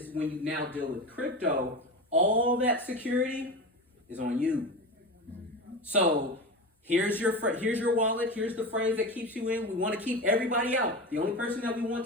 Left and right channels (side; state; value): both; normal; correlation 0.24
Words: when you now deal with crypto, all that security is on you. So here's your wallet. Here's the phrase that keeps you in. We want to keep everybody out. The only person that we